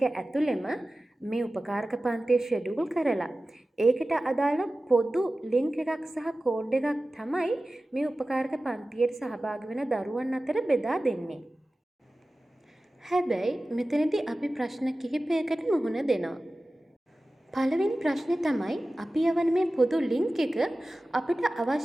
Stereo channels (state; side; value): normal; both; correlation 0.96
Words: ඇතුළෙම මේ උපකාරක පන්තිය ෂෙඩියුල් කරලා ඒකට අදාළ පොදු ලින්ක් එකක් සහ කෝඩ් එකක් තමයි මේ උපකාරක පන්තියට සහභාගී වෙන දරුවන් අතර බෙදා දෙන්නේ. හැබැයි මෙතනදී අපි ප්‍රශ්න කිහිපයකට මුහුණ දෙනවා. පළවෙනි ප්‍රශ්නේ තමයි අපි යවන මේ පොදු ලින්ක් එක අපිට